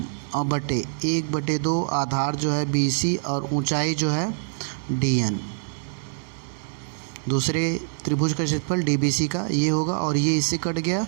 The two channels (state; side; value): silent; left; 58 dB below the other